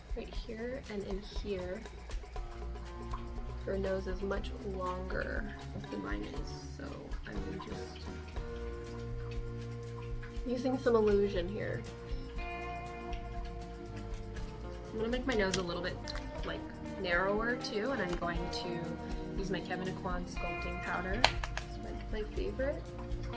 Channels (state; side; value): identical; both; correlation 1.00